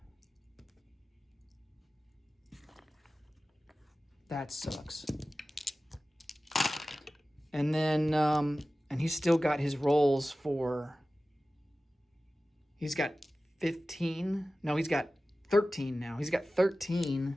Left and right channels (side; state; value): both; normal; correlation 0.96